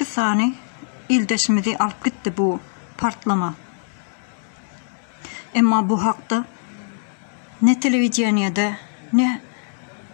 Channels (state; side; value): silent; right; digital silence